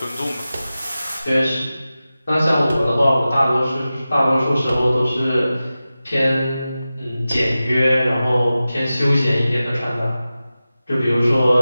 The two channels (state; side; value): inverted; both; correlation -0.95